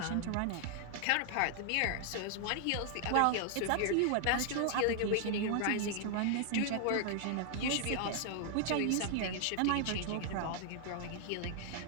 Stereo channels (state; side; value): different; both; correlation 0.00